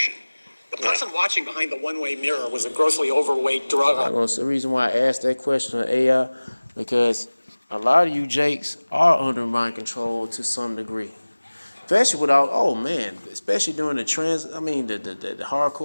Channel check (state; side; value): inverted; both; correlation -1.00